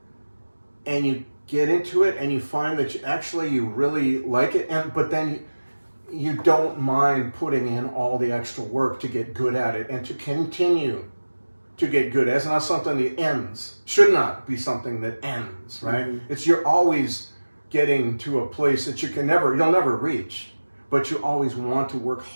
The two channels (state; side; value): inverted; both; correlation -1.00